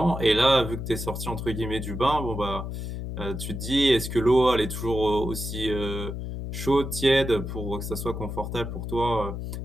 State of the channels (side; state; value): left; noise; hum, 6 dB below the sound